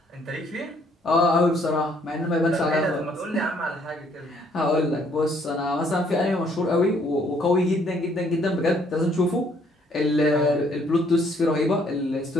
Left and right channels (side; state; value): both; normal; correlation 0.65